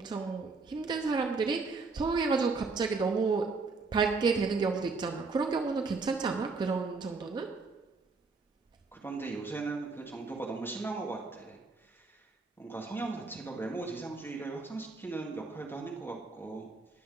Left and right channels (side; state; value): left; quieter; 4.1 dB